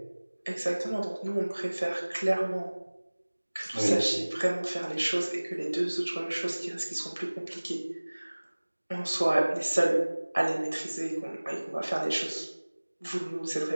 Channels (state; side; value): inverted; both; correlation -1.00